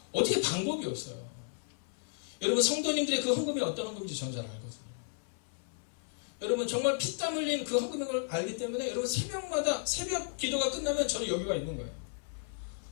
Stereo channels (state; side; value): silent; right; 55 dB below the other